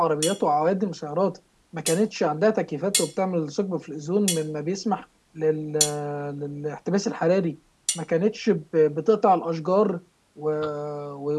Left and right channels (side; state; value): both; identical; correlation 1.00